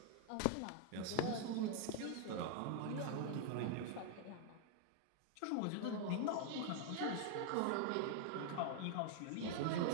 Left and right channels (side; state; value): both; different; correlation 0.00